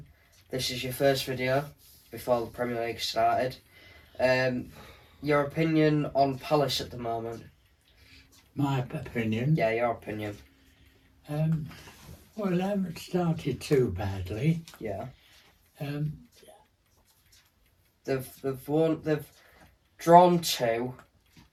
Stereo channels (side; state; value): both; identical; correlation 1.00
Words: This is your first video before the Premier League started. Your opinion on Palace at the moment? My opinion. Yeah, your opinion. Well, they haven't started too badly. Yeah. Um, They've drawn 2